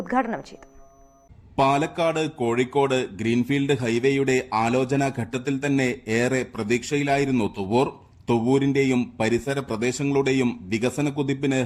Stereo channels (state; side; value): identical; both; correlation 1.00